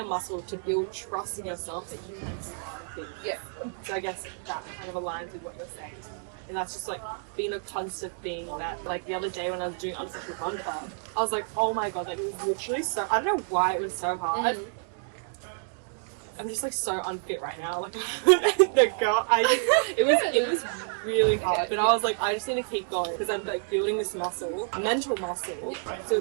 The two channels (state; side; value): silent; left; 59 dB below the other